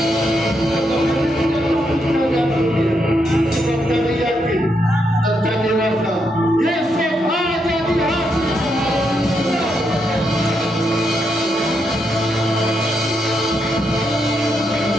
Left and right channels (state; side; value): normal; both; correlation 0.80